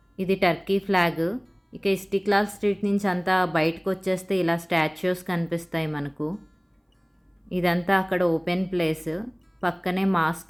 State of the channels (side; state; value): both; identical; correlation 1.00